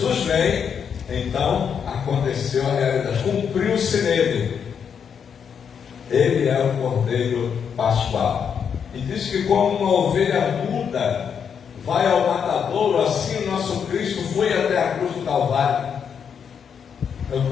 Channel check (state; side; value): quieter; right; 7.2 dB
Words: vem, então aconteceu a realidade, cumpriu-se nele. Ele é o Cordeiro Pascual. E diz que como uma ovelha muda vai ao matadouro, assim o nosso Cristo foi até a cruz do Calvário. Eu